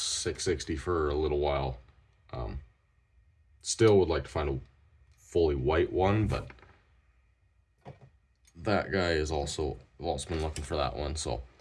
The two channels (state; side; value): identical; both; correlation 1.00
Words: for a little while. Still would like to find a fully white one, but that guy is also, I've also been looking for that one. So,